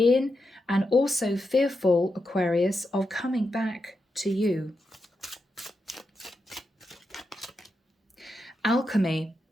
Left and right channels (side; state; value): both; normal; correlation 0.87